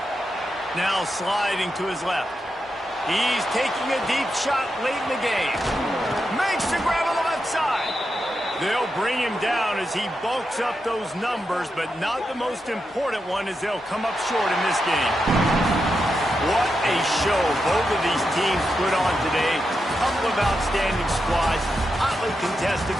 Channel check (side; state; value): both; normal; correlation 0.86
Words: Now sliding to his left. He's taking a deep shot late in the game. Makes the grab on the left side. They'll bring him down as he bulks up those numbers, but not the most important one as they'll come up short in this game. What a show both of these teams put on today. Couple of outstanding squads, hotly contested